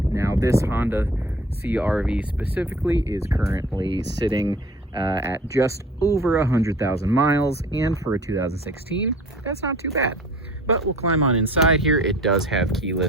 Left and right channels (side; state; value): both; normal; correlation 0.46